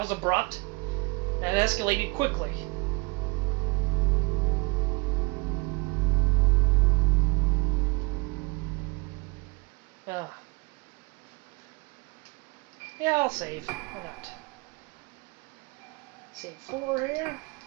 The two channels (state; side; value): quieter; left; 27.3 dB